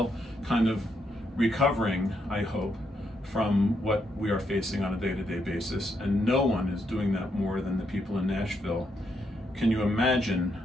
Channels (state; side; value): normal; both; correlation 0.78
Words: kind of recovering, I hope, from what we are facing on a day-to-day basis, and no one is doing that more than the people in Nashville. Can you imagine